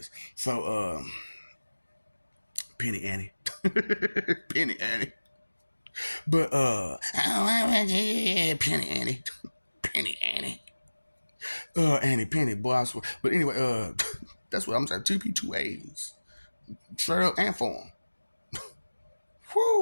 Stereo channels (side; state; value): both; inverted; correlation -1.00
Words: So Penny Annie, Penny Annie, but Penny Annie, Penny Annie, Annie Penny, boy, I swear. But anyway, that's what I'm saying. Two P two A's, straight up and form.